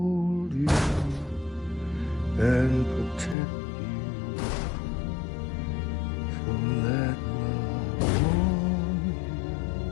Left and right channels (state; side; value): drops out; right; at 3.4 s